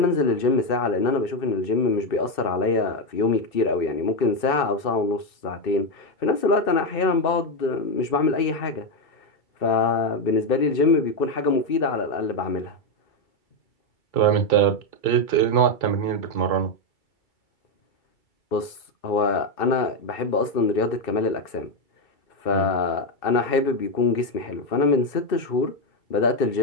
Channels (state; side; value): late; right; 2.6 ms